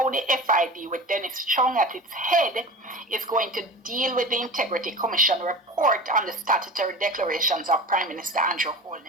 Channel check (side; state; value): both; normal; correlation 0.33